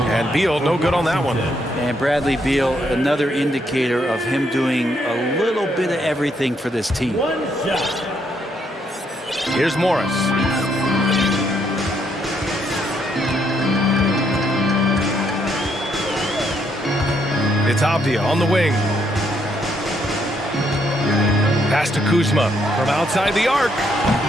And Beal, no good on that one. And Bradley Beal, another indicator of him doing a little bit of everything for this team. One shot. Here's Morris. It's Avdia on the wing. Pass to Kuzma from outside the arc.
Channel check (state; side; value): normal; both; correlation 0.74